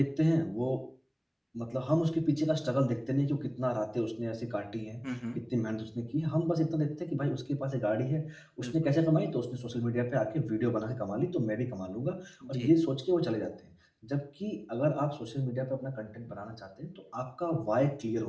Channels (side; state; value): both; identical; correlation 1.00